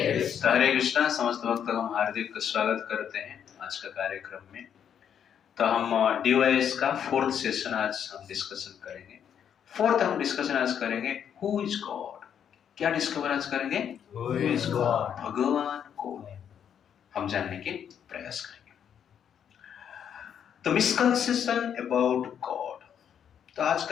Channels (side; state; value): right; quieter; 8.6 dB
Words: कृष्णा। हरे कृष्णा। समस्त भक्तों का हम हार्दिक स्वागत करते हैं आज का कार्यक्रम में। तो हम डीवाईएस का फोर्थ सेशन आज हम डिस्कशन करेंगे। हम डिस्कशन आज करेंगे हु इज गॉड। क्या डिस्कवर आज करेंगे? Who is God? भगवान कौन है, हम जानने के प्रयास करेंगे। तो मिसकंसेप्शन अबाउट गॉड। तो